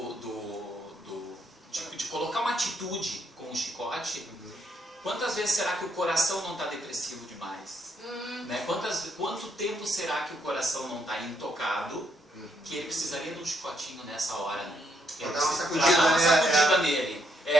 de colocar uma atitude com o chicote. Quantas vezes será que o coração não está depressivo demais? Né? Quanto tempo será que o coração não está intocado, que ele precisaria de um chicotinho nessa hora? Né? Para dar uma sacudida nele.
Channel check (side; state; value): both; normal; correlation 0.75